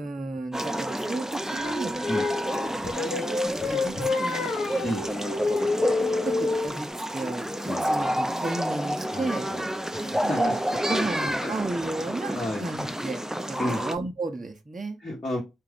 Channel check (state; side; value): normal; both; correlation 0.88